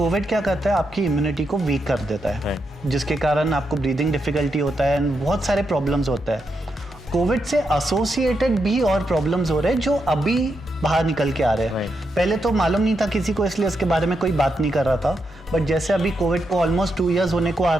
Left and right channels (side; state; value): both; normal; correlation 0.83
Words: क्या करता है, आपकी इम्यूनिटी को वीक कर देता है, जिसके कारण आपको ब्रीदिंग डिफिकल्टी होता है, बहुत सारे प्रॉब्लम्स होता है। कोविड से एसोसिएटेड भी और प्रॉब्लम्स हो रहे हैं जो अभी बाहर निकल के आ रहे हैं। पहले तो मालूम नहीं था किसी को, इसलिए इसके बारे में कोई बात नहीं कर रहा था, बट जैसे अभी कोविड को ऑलमोस्ट 2 इयर्स होने को आ